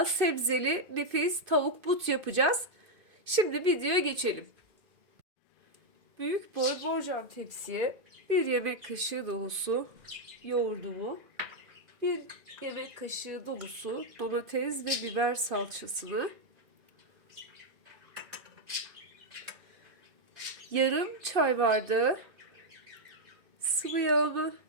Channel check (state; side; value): late; left; 2.5 ms